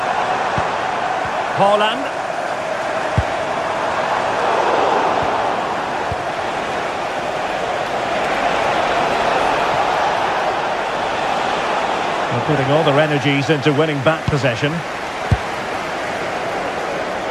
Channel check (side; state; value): both; identical; correlation 1.00